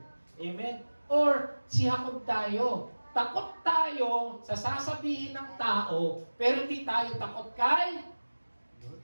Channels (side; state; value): both; inverted; correlation -1.00